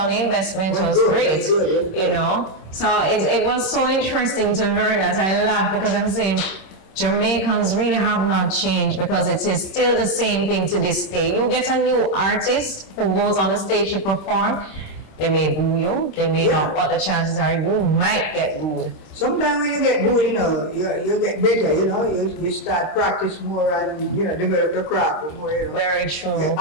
the investment was good, great. good. You know, so it was so interesting to learn that. I laughed because I'm saying Jamaicans really have not changed, because it is still the same thing to this day. You get a new artist who goes on the stage to perform, they may boo you, they may not, but the chances are you might get booed. Sometimes when you get booed, you know, you get better, you know, you start practice more and, you know, develop your craft more, you know. Very true. Yeah,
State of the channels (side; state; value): right; late; 26 ms